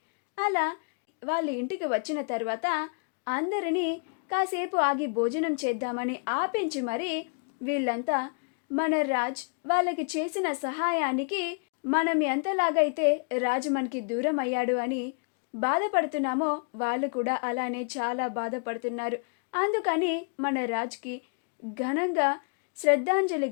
అలా వాళ్ళ ఇంటికి వచ్చిన తర్వాత అందరినీ కాసేపు ఆగి భోజనం చేద్దామని ఆపించి మరి వీళ్ళంతా మన రాజ్ వాళ్ళకి చేసిన సహాయానికి మనం ఎంతలాగైతే రాజు మనకి దూరం అయ్యాడు అని బాధపడుతున్నామో వాళ్ళు కూడా అలానే చాలా బాధపడుతున్నారు. అందుకని మన రాజ్కి ఘనంగా శ్రద్ధాంజలి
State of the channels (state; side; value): quieter; right; 39.1 dB